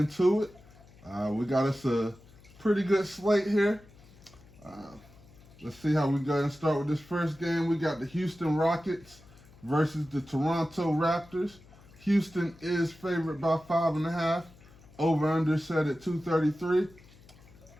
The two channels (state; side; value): noise; left; hum, 24 dB below the sound